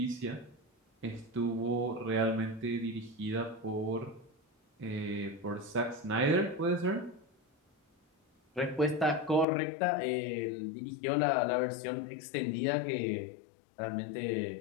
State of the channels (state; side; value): drops out; right; at 9.5 s